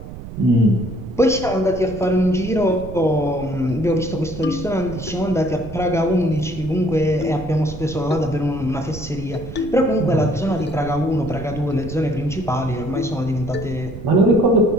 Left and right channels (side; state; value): right; noise; rumble, 12 dB below the sound